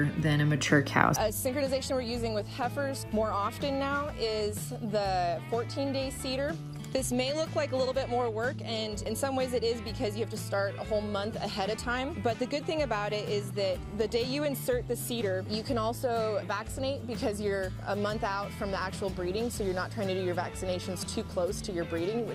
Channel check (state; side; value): identical; both; correlation 1.00